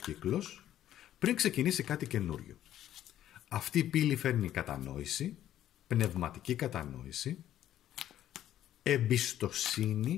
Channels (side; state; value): right; quieter; 12.0 dB